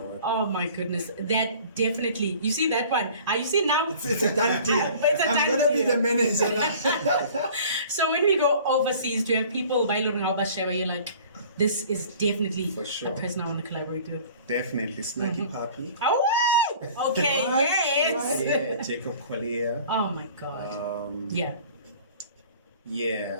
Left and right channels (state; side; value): inverted; both; correlation -0.47